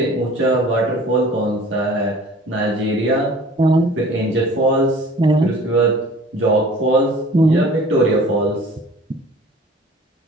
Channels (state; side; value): normal; both; correlation 0.47